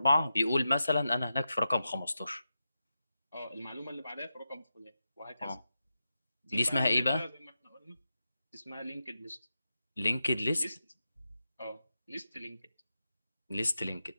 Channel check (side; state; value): both; inverted; correlation -0.90